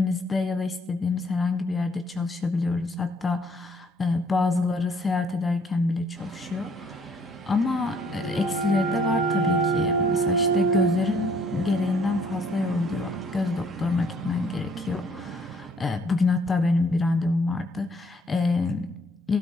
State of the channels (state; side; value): normal; both; correlation 0.63